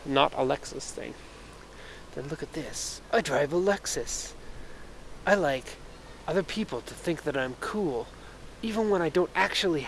not a Lexus thing. Then look at this. I drive a Lexus. I like other people to think that I'm cool, even when I don't actually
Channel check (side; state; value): both; identical; correlation 1.00